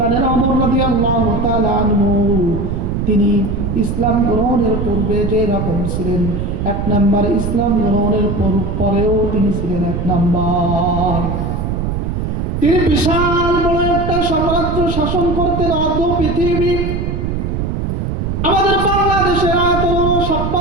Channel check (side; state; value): right; noise; rumble, 2 dB below the sound